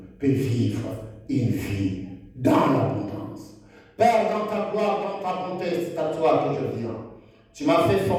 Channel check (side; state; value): both; identical; correlation 1.00